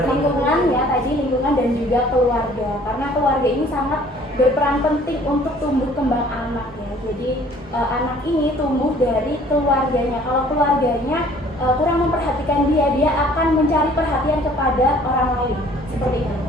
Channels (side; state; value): both; normal; correlation 0.55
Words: lingkungan ya, tadi lingkungan dan juga keluarga. Karena keluarga ini sangat berperan penting untuk tumbuh kembang anak ya. Jadi anak ini tumbuh dari keluarganya. Kalau keluarganya kurang memperhatikan dia akan mencari perhatian kepada orang lain. Seperti itu.